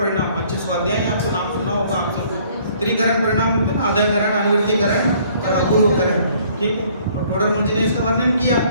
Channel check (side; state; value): both; inverted; correlation -0.59